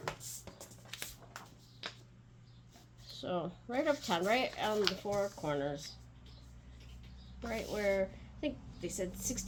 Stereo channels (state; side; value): identical; both; correlation 1.00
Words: So, right uptown, right on the four corners. Right where, I think they said